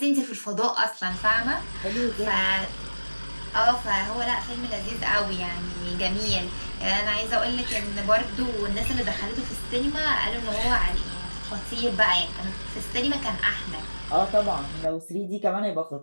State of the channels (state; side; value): inverted; both; correlation -1.00